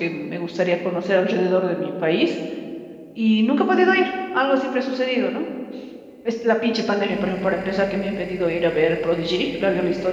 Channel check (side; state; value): both; identical; correlation 1.00